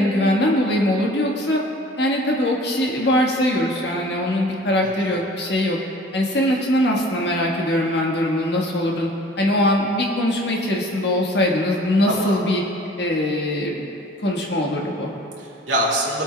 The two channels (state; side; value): normal; both; correlation 0.48